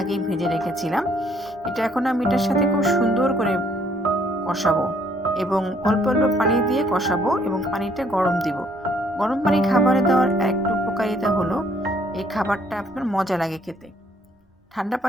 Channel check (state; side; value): normal; both; correlation 0.65